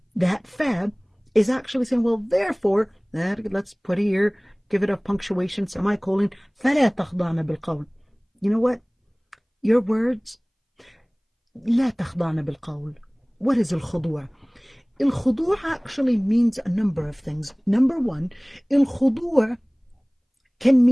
that fa is actually saying, well, therefore, let's put here, give it a punctuation, semicolon, فَلَا تَخْضَعْنَ بِالْقَوْلِ. You know what? Your words, لا تخضعن بالقول. What is الخضوع? الخضوع actually means a number of things. Number one, الخضوع can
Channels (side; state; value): both; identical; correlation 1.00